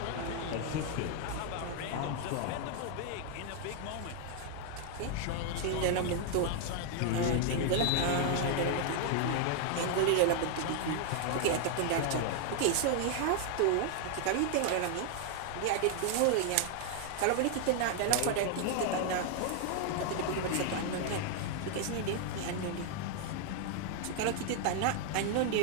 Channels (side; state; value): both; different; correlation 0.00